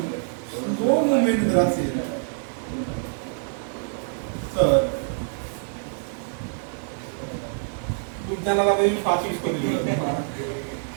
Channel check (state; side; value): silent; left; 61 dB below the other